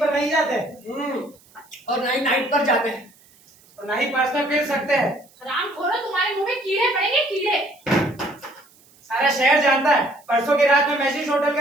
पर नहीं जाते और ना ही नाइट पर जाते हैं और ना ही पर्सनल फिर सकते हैं। हराम खोरो, तुम्हारे मुंह में कीड़े पड़ेंगे, कीड़े। सारा शहर जानता है परसों की रात में मैजिक होटल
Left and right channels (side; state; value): right; noise; hiss, 29 dB below the sound